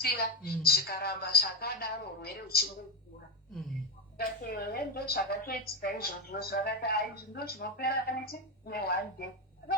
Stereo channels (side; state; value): both; normal; correlation 0.08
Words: zvikaramba zvakadaro urwere huchingokura ndo zvakatoitika izvozvo zvakati izvi ndo zvinopera kaneti ne1 day